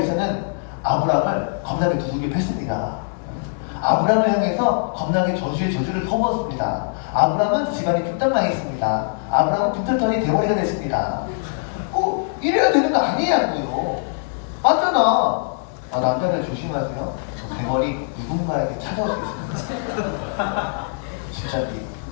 아브람을 겁나게 두들겨 팼습니다. 아브람을 향해서 겁나게 저주의 저주를 퍼부었습니다. 아브람은 집안이 뚝딱 망했습니다. 아브람은 빈털터리 대머리가 됐습니다. 이래야 되는 거 아니냐고요. 맞잖아. 남자들 조심하세요. 대머리 누군가에게 찾아올 수 있습니다. 진짜지.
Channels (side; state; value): right; silent; digital silence